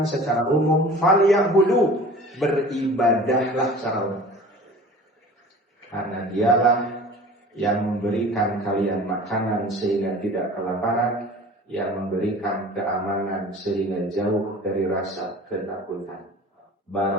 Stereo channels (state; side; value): normal; both; correlation 0.42